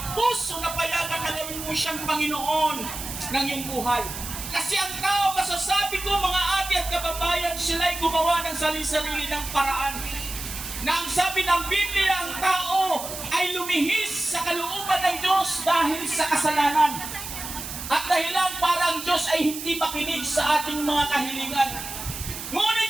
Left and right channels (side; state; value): right; noise; hiss, 8 dB below the sound